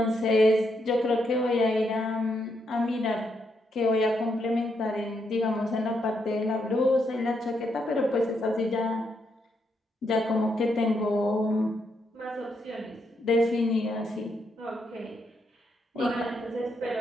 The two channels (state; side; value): normal; both; correlation 0.78